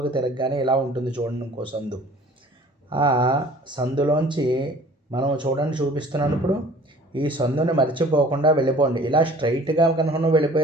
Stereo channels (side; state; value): both; normal; correlation 0.49